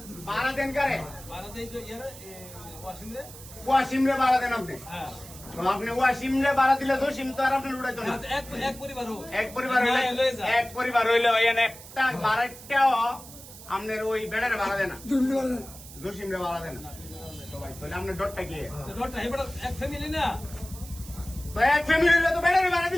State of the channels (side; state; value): right; noise; hiss, 16 dB below the sound